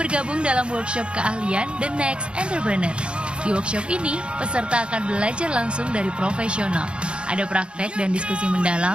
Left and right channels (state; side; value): late; left; 0.056 ms